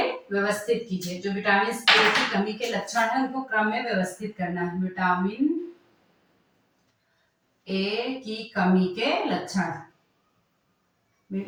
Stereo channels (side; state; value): both; identical; correlation 1.00